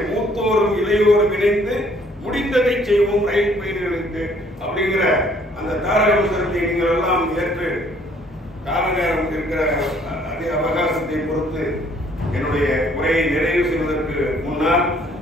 மூத்தோரும் இளையோரும் இணைந்து முடிந்ததை செய்வோம் ரயில் பயணிகளுக்கு அப்படிங்கிற அந்த தாரக மந்திரத்தை நீங்கள் எல்லாம் ஏற்று கால நேரம் இருக்கிற அதே அவகாசத்தை பொறுத்து என்னுடைய உரையை நிறைவு செய்வதற்கு முன்னால்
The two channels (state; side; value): normal; both; correlation 0.62